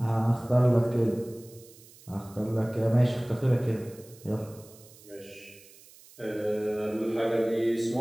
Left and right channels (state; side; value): noise; right; hiss, 23 dB below the sound